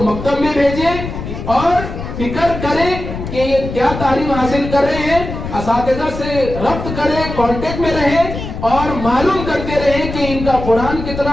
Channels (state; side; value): noise; left; rumble, 7 dB below the sound